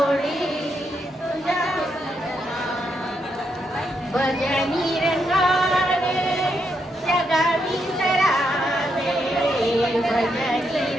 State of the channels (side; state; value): both; normal; correlation 0.80